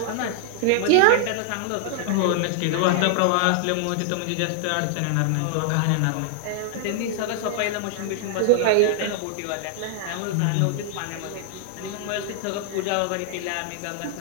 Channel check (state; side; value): different; both; correlation 0.00